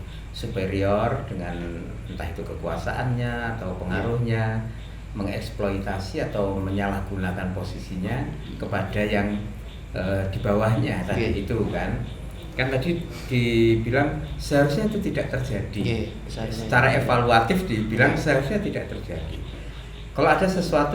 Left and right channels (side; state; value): both; identical; correlation 1.00